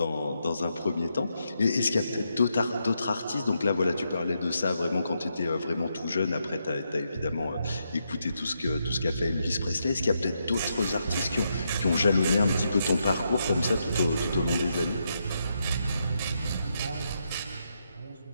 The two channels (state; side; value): inverted; both; correlation -0.81